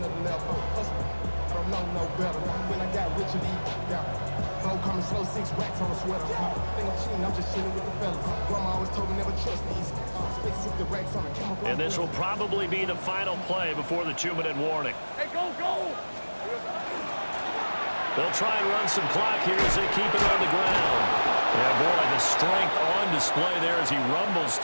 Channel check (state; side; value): inverted; both; correlation -1.00